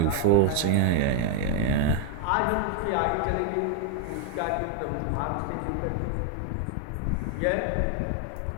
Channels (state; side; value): different; both; correlation 0.01